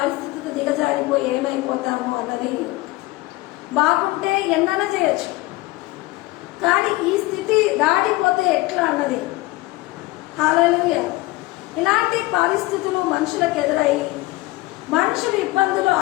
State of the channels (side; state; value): right; quieter; 20.2 dB